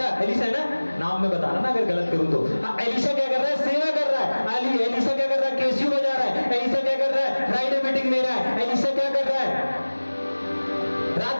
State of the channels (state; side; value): inverted; both; correlation -1.00